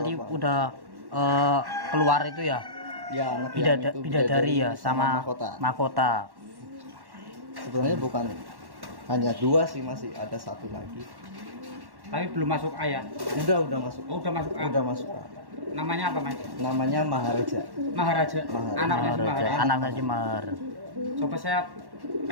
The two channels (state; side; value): late; left; 1.1 ms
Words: tua, Pak. udah keluar itu ya. Ya anak yang itu Bidadari ya sama mahkota. mahkota. Sebenarnya bukan hanya 2 sih, masih ada 1 lagi. Tapi belum masuk A ya. Udah masuk. Oh, udah masuk A. Udah masuk. Namanya apa Mas? Namanya Maharaja. Maharaja. Maharaja. Anaknya si Mahar. Anaknya si Mahar. Coba saya